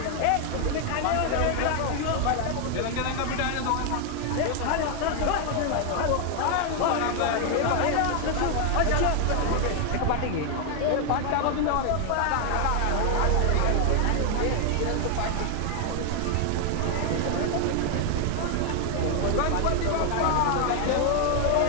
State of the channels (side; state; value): both; different; correlation 0.00